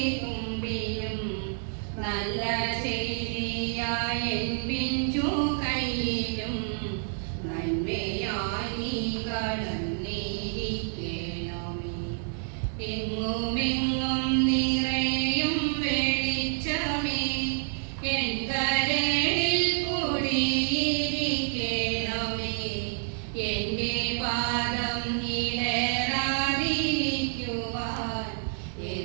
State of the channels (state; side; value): silent; left; 59 dB below the other